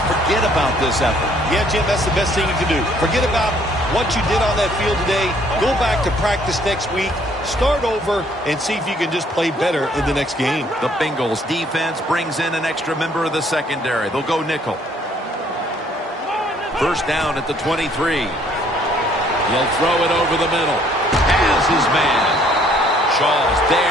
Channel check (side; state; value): both; normal; correlation 0.63